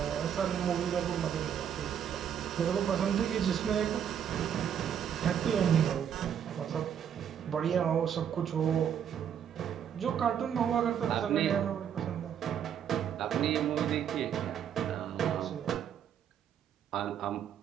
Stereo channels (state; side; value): quieter; left; 8.8 dB